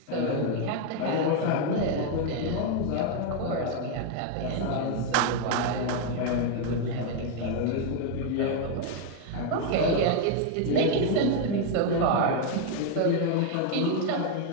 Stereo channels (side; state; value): both; different; correlation 0.01